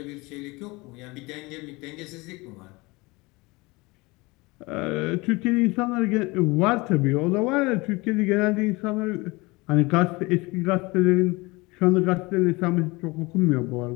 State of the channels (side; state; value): right; quieter; 23.9 dB